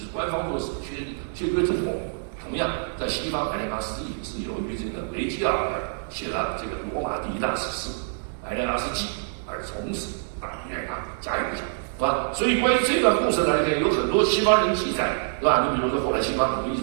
官方做史确凿之后。同样，在西方艾莲阿斯纪是由于这个维吉尔写了这个罗马第一大史诗《艾莲阿斯纪》，而从此大名远扬，家喻户晓，是吧？所以关于这段故事呢，有很多西方人记载，是吧？你比如说后来西方很多艺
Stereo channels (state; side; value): silent; left; digital silence